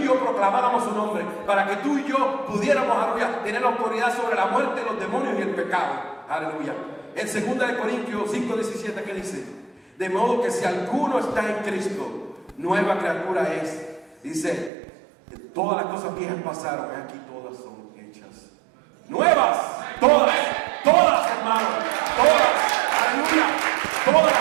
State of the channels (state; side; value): drops out; left; at 14.7 s